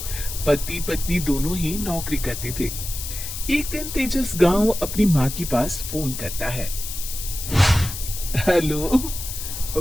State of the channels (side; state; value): left; noise; hiss, 7 dB below the sound